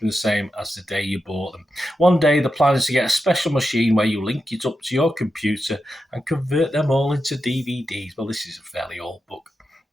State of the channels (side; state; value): both; normal; correlation 0.88